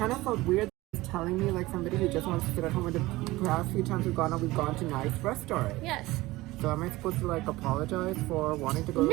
of felt weird telling me like somebody who just wants to sit at home. With the past few times we've gone to nice restaurants. Yes. So am I supposed to like apologize for wanting to go to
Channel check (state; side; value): quieter; left; 19.3 dB